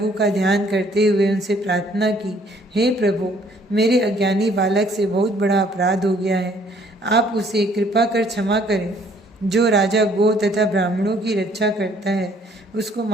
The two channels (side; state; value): both; normal; correlation 0.61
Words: का ध्यान करते हुए उनसे प्रार्थना की, हे प्रभु, मेरे अज्ञानी बालक से बहुत बड़ा अपराध हो गया है, आप उसे कृपा कर क्षमा करें। जो राजा गो तथा ब्राह्मणों की रक्षा करता है उसको